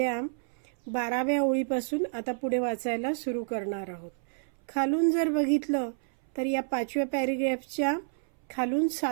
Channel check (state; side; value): silent; left; 58 dB below the other